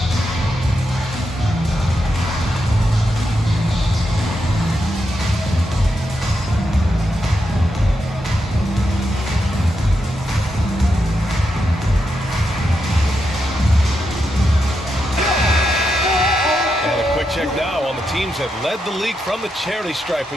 Check now on the teams that led the league from the charity stripe a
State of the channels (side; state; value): both; normal; correlation 0.84